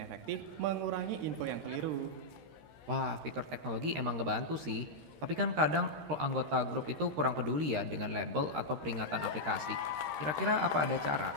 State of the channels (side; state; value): left; late; 13 ms